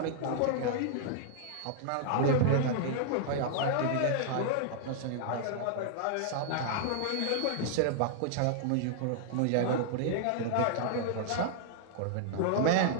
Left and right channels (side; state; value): both; different; correlation -0.01